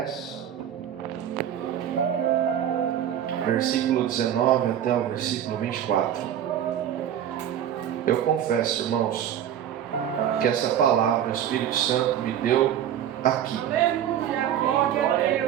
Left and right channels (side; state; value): left; quieter; 10.2 dB